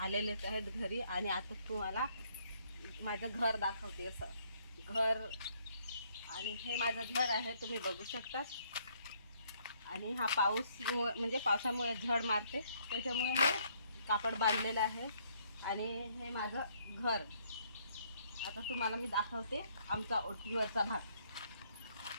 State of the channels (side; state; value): both; inverted; correlation -0.67